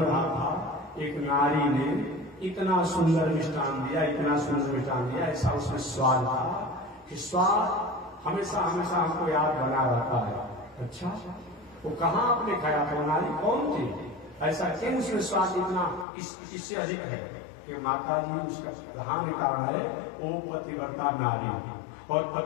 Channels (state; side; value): drops out; right; at 16.1 s